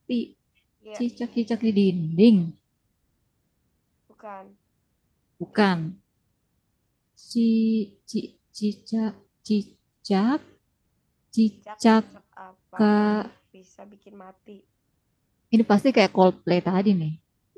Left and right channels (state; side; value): identical; both; correlation 1.00